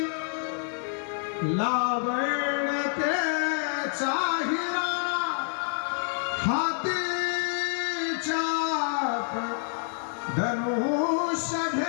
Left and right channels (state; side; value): silent; right; digital silence